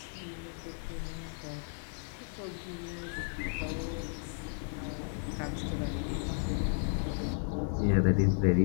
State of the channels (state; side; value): silent; right; 55 dB below the other